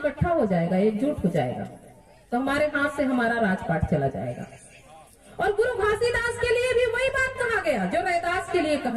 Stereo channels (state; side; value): identical; both; correlation 1.00